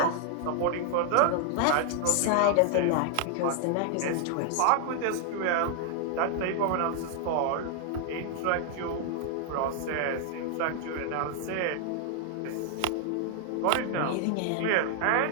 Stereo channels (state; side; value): different; both; correlation 0.00